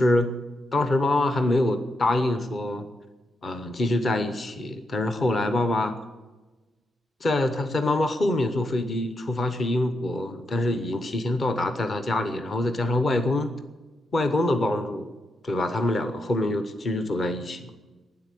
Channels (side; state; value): both; normal; correlation 0.83